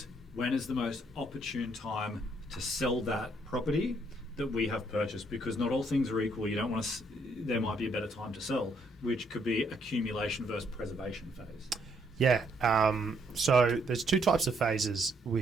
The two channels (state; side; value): normal; both; correlation 0.71